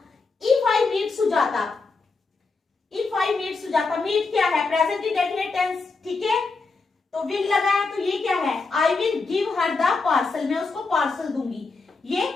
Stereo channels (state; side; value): quieter; right; 4.1 dB